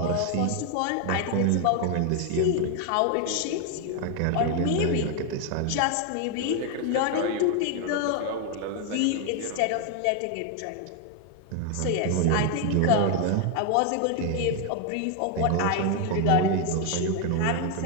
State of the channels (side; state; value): both; different; correlation 0.01